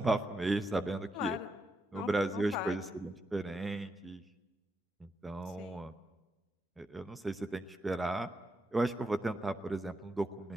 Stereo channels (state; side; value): normal; both; correlation 0.83